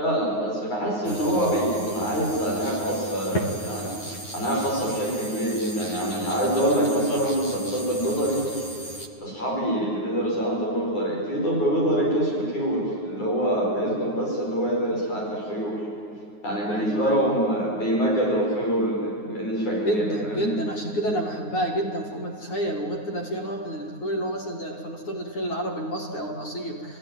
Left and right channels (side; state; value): right; late; 9.6 ms